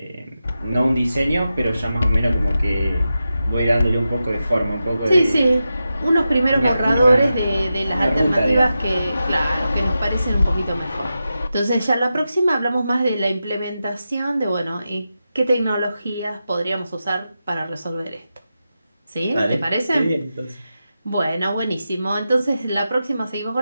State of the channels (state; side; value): inverted; both; correlation -0.90